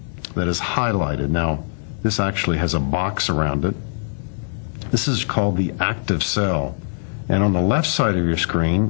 that is highlighted. Now, this actually has a box around it. This is called the active cell. And on the left side of your screen,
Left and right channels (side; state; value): right; silent; digital silence